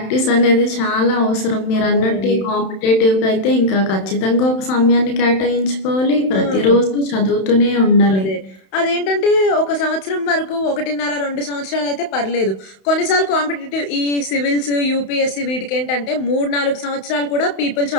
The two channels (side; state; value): right; late; 31 ms